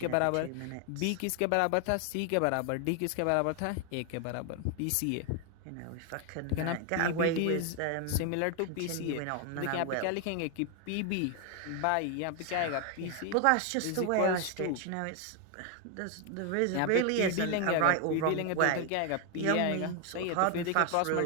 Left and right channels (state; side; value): different; both; correlation 0.01